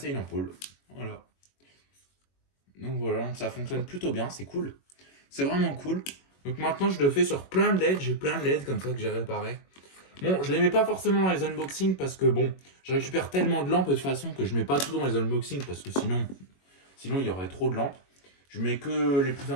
une ampoule. Voilà. Donc voilà, donc ça fonctionne plutôt bien, c'est cool. C'est vraiment cool. Donc maintenant, je le fais sur plein de LED. J'ai plein de LED comme ça que j'ai réparé. Bon, je les mets pas forcément dans les unboxings parce que bon, je récupère tellement de lampes de toute façon que je mets pas tout dans les unboxings parce que sinon il y aurait trop de lampes. Je mets que les plus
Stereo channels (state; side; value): late; right; 21 ms